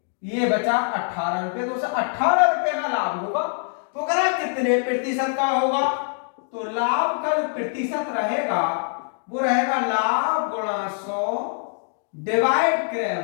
ये बचा 18 रुपए, तो उसे 18 रुपए का लाभ होगा। तो कह कितने प्रतिशत का होगा? तो लाभ का जो प्रतिशत रहेगा वो रहेगा लाभ गुणा 100 डिवाइड क्रय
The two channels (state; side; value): silent; right; 63 dB below the other